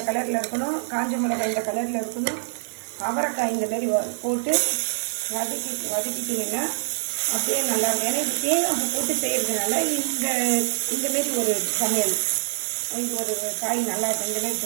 கலரில் இருக்கணும், காஞ்ச மிளகாய் இந்த கலரில் இருக்கணும், அவரைக்காய் இந்த மாதிரி போட்டு வதக்கிட்டிங்கன்னா அப்படியே நல்லா இருக்கும். ஏன்னா இது தேங்காய் போட்டு செய்கிறதுனால இந்தமாரி ஒரு சமையல், இது ஒரு காய் நல்லா இருக்கும். இந்த மாதிரி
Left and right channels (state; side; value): silent; left; digital silence